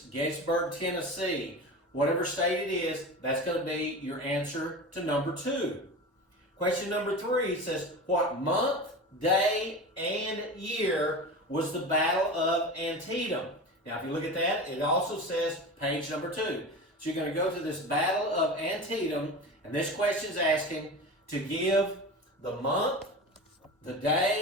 Gettysburg, Tennessee, whatever state it is, that's going to be your answer to number 2. Question number 3 says, what month, day, and year was the Battle of Antietam? Now, if you look at that, it also says page number 2. So you're going to go to this Battle of Antietam, and this question is asking to give the month, the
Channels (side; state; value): both; normal; correlation 0.29